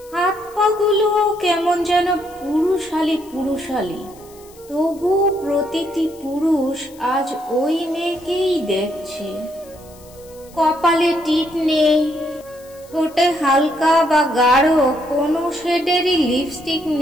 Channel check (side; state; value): left; noise; hiss, 24 dB below the sound